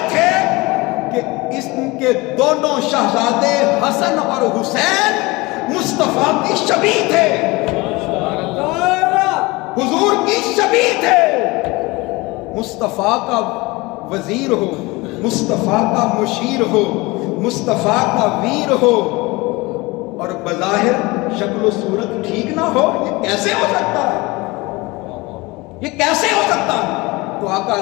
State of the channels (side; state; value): right; quieter; 23.1 dB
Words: تھے کہ اس کے دونوں شہزادے حسن اور حسین مصطفیٰ کی شبیہ تھے، حضور کی شبیہ تھے۔ مصطفیٰ کا وزیر ہو، مصطفیٰ کا مشیر ہو، مصطفیٰ کا ویر ہو، اور بظاہر شکل و صورت ٹھیک نہ ہو؟ یہ کیسے ہو سکتا ہے؟ یہ کیسے ہو سکتا ہے؟ تو آقا